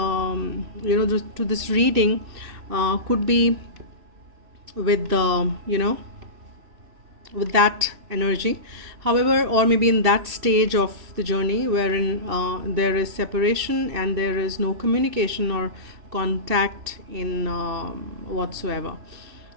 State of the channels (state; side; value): late; left; 2.7 ms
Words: this reading, could be with the, with that energy. However, or maybe in that stage of the journey wherein there is separation and there is no communication or contact in whatsoever,